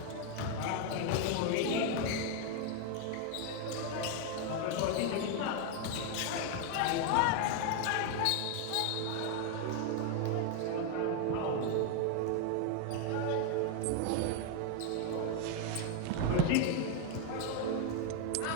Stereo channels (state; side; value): different; both; correlation 0.01